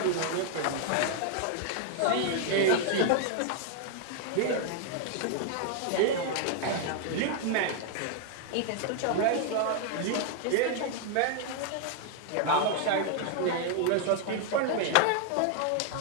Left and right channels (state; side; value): different; both; correlation 0.00